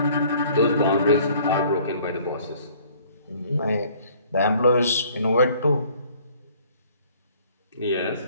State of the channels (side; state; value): both; inverted; correlation -0.57